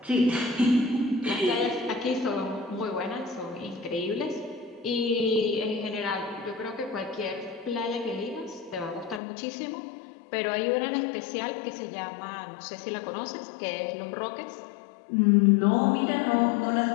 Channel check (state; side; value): drops out; right; at 9.2 s